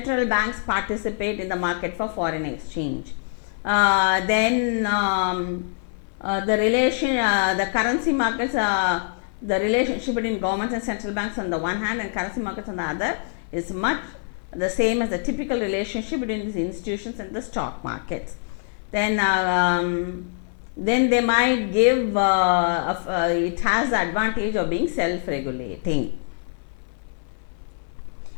banks participate in the market for foreign exchange. Then the currency markets, the relationship between governments and central banks on the one hand and currency markets on the other is much the same as the typical relationship between these institutions and the stock markets. Then they might give it has the advantage of being self-regulating.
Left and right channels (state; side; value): silent; right; 62 dB below the other